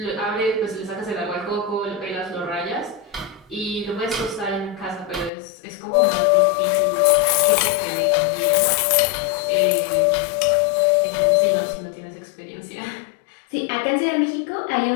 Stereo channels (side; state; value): right; drops out; at 5.3 s